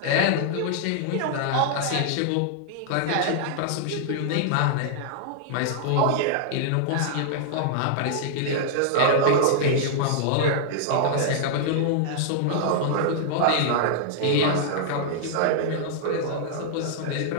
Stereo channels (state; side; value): different; both; correlation -0.01